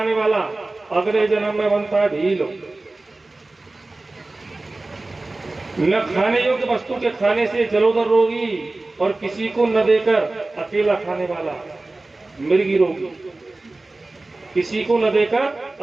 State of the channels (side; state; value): left; quieter; 3.1 dB